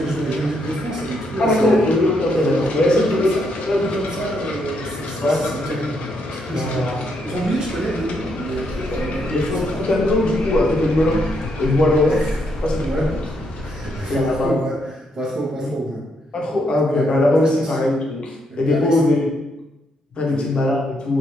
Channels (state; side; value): normal; both; correlation 0.76